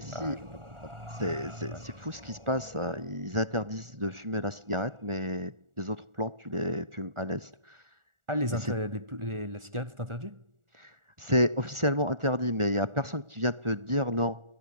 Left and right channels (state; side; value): late; left; 1.4 ms